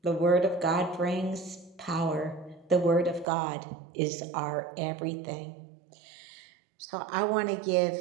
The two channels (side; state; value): left; drops out; at 3.2 s